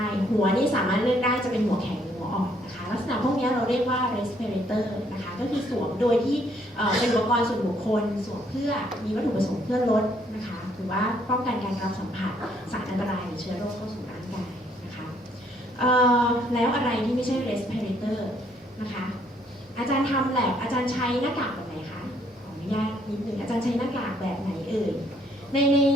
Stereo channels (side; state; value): both; normal; correlation 0.67